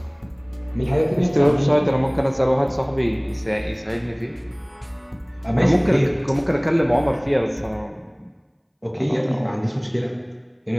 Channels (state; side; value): identical; both; correlation 1.00